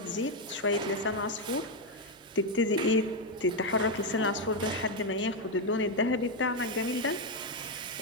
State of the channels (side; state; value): both; normal; correlation 0.05